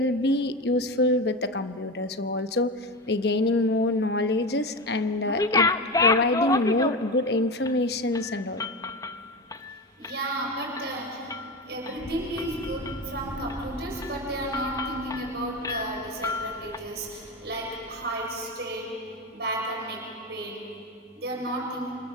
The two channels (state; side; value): normal; both; correlation 0.21